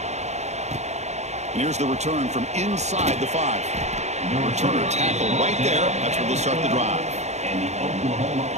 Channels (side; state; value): left; late; 0.33 ms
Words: And here's the return from inside the 5. The returner tackle right there. That's where they'll start the drive. And the Oklahoma